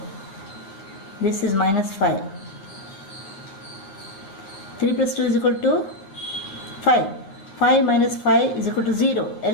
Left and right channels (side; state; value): right; late; 10 ms